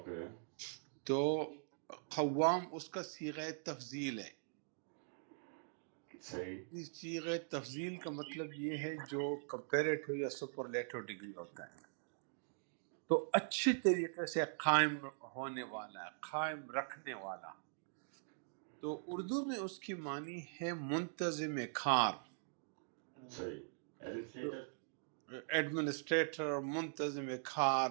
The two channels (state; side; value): silent; left; digital silence